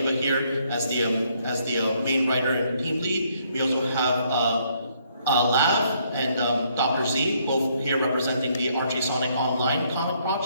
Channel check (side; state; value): both; inverted; correlation -0.69